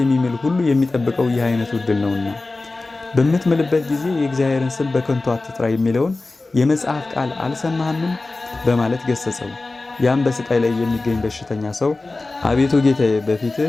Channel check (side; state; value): right; quieter; 3.3 dB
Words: ሁሉ የሚጠብቀው ይህ አይነቱ ዕድል ነውና በምትምልበት ጊዜ የእግዚአብሔርን ስም በከንቱ አትጥራ የሚለውን የመጽሐፍ ቃል አልሰማህምን? በማለት ገሰጸው። ያም በስቃይ ላይ የሚገኝ በሽተኛ ሰው አቤቱ ጌታዬ